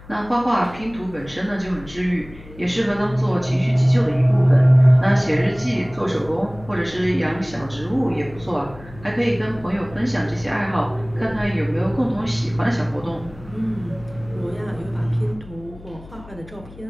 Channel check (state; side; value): noise; left; hum, 19 dB below the sound